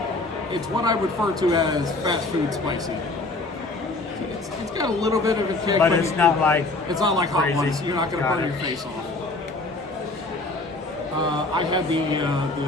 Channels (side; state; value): right; quieter; 3.1 dB